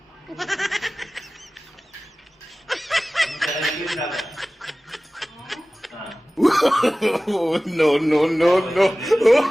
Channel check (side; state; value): both; normal; correlation 0.97